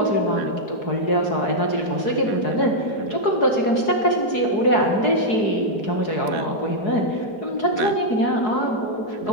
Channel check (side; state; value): right; late; 4.7 ms